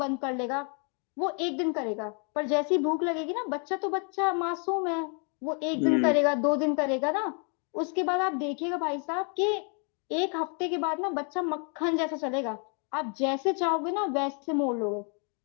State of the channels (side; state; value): right; quieter; 39.2 dB